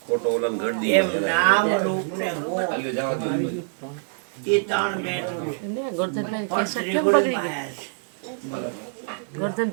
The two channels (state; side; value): silent; left; 62 dB below the other